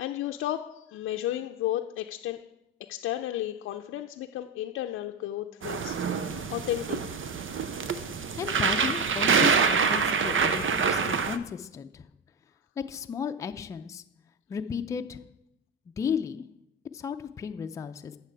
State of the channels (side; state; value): both; normal; correlation 0.13